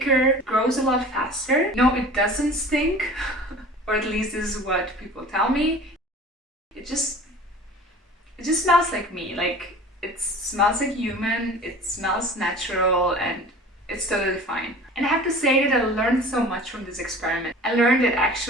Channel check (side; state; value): both; normal; correlation 0.42